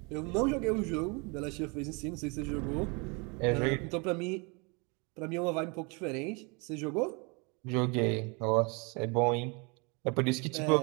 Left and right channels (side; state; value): left; quieter; 31.2 dB